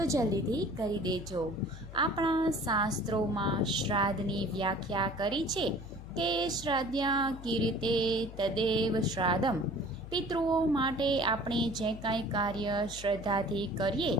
જલ્દીથી કરી દેજો. આપણા શાસ્ત્રોમાં શ્રાદ્ધની વ્યાખ્યા કરી છે કે શ્રાદ્ધ્યા કીર્તે તદેવ શ્રાદ્ધમ. પિતૃઓ માટે આપણે જે કાંઈ કાર્ય શ્રદ્ધાથી કરીએ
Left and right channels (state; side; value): noise; left; hum, 14 dB below the sound